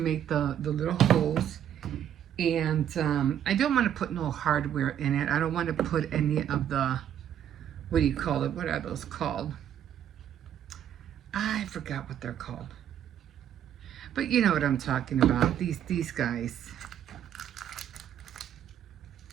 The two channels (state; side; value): quieter; left; 10.1 dB